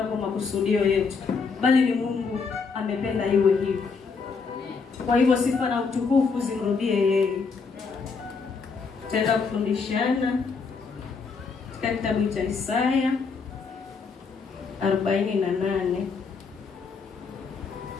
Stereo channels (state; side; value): quieter; right; 5.0 dB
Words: kwa makusudio yetu, bali ni Mungu amependa iwe hivyo. Kwa hivyo sifa na utukufu zimrudie yeye. Tutaenda kufundishana katika kitabu cha Isaya 48.